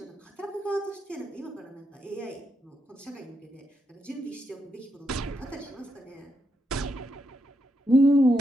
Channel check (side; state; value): both; normal; correlation 0.81